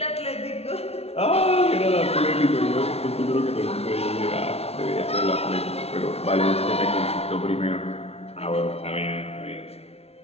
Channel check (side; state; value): right; late; 0.30 ms